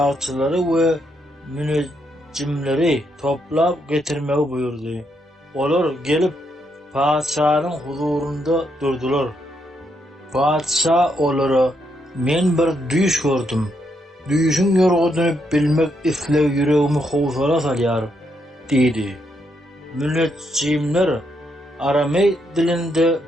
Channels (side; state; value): both; normal; correlation 0.78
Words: we münejjimleri toplap getirmegi buyurdy. Olar gelip padşanyň huzurunda durdular. Padşa olara, "Men bir düş gördüm. Düşüň ýorgudyny bilmek isleg yüregimi howsala salýar" diýdi. Münejjimler Aramey dilinde